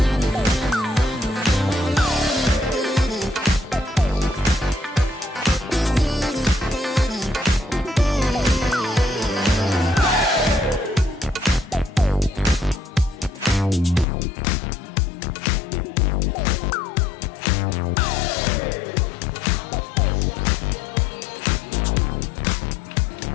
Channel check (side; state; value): right; drops out; at 14.1 s